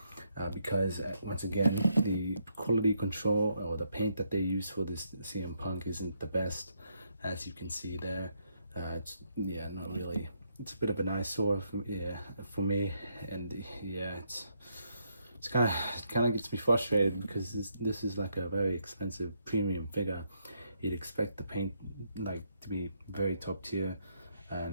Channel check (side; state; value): both; inverted; correlation -0.76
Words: because once again, the quality control or the paint that they use for this CM Punk isn't the best, as you can see there. Not really. It's a bit of an eyesore for me, and it's kind of gets me frustrated, because this is like a very expensive premium figure. You'd expect the paint like to be very top tier,